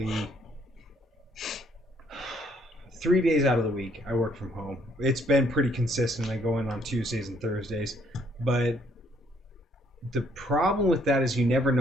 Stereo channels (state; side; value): normal; both; correlation 0.67